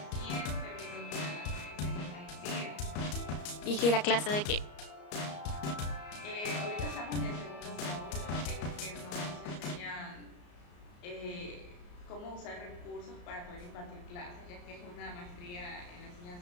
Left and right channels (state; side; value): late; right; 34 ms